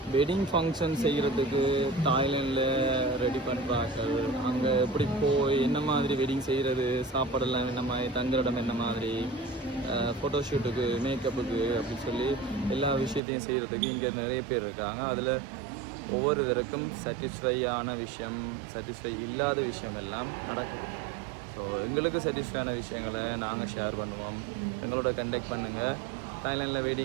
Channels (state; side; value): drops out; left; at 13.2 s